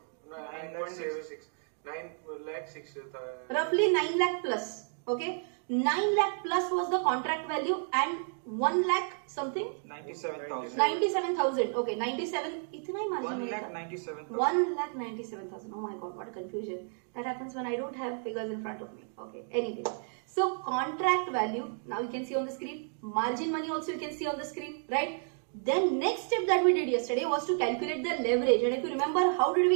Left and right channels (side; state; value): left; silent; 57 dB below the other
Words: 9.06. 9 lakh 6. Roughly 9 lakh plus. Okay. 9 lakh plus was the contract value and 1 lakh something? 97,000. 97,000. Okay. 97. इतना ही margin 1,97,000. 1,97,000. Oh my god, what a confusion. That happens when I don't have figures in front of me. Okay. Anyway. So contract value, now you can see on the screen. Margin money also you can see on the screen, right? Then next step that we did yesterday was to calculate the leverage. And if you remember, how did